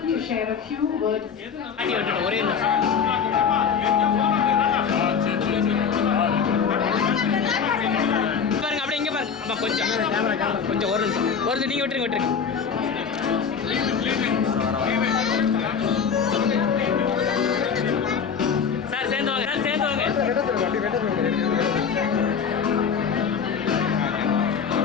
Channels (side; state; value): right; quieter; 6.6 dB